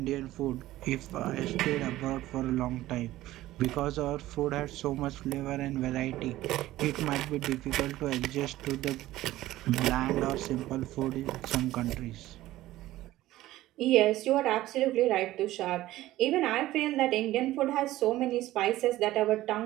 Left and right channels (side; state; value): left; quieter; 15.8 dB